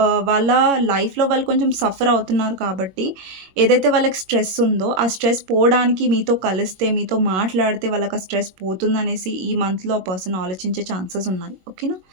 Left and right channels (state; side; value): late; left; 22 ms